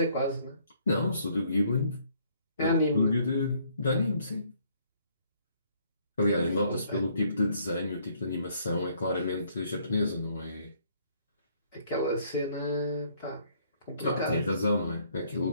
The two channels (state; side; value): inverted; both; correlation -0.65